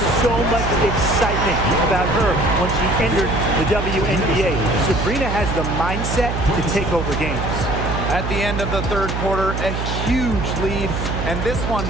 so much excitement about her when she entered the WNBA. Sabrina has the mindset to take over games. At the end of the third quarter, a huge lead, and this one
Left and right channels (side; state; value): right; noise; hum, 3 dB below the sound